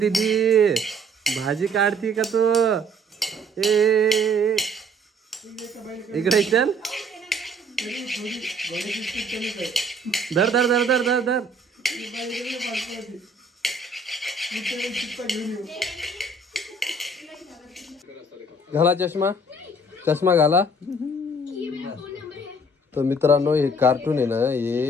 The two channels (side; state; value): both; normal; correlation 0.57